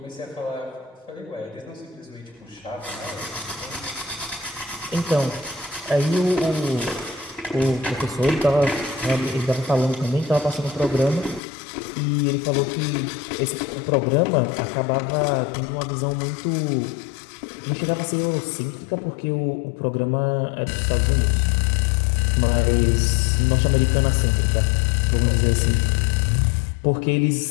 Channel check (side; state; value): right; drops out; at 11.4 s